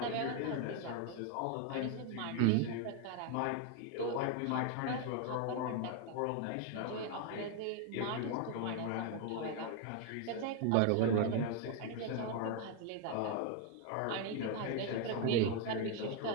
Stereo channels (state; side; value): different; both; correlation 0.01